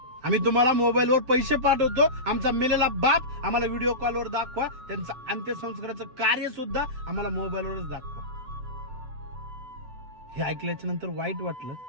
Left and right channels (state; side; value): late; left; 7.9 ms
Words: आम्ही तुम्हाला मोबाईलवर पैसे पाठवतो, आमचा मेलेला बाप आम्हाला व्हिडिओ कॉलवर दाखवा, त्यांचं अंत्यसंस्काराचं कार्य सुद्धा आम्हाला मोबाईलवरच दाखवा. हे ऐकल्याच्या नंतर वाईट वाटलं.